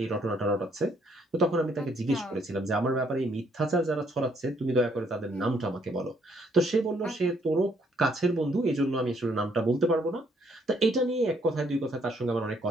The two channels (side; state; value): both; normal; correlation 0.68